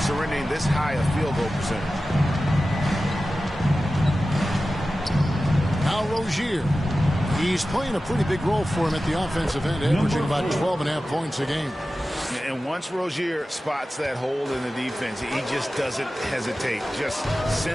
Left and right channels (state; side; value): normal; both; correlation 0.94